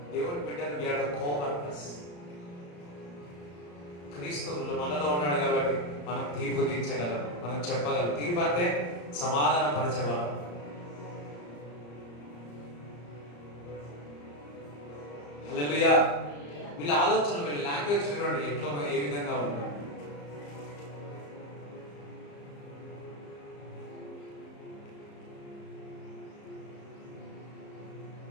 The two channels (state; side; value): late; right; 34 ms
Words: దేవుని బిడ్డలు we are the co-workers. క్రీస్తువులు మనలో ఉన్నాడు కాబట్టి మనం తీర్పు తీర్చగలం, మనం చెప్పగలం. తీర్పు అంటే సమాధాన పరచగలం. హల్లెలూయా. వీళ్ళ ఆలోచన, వీళ్ళ లాంగ్వేజ్ చూడండి ఎట్లా ఏ విధంగా ఉందో.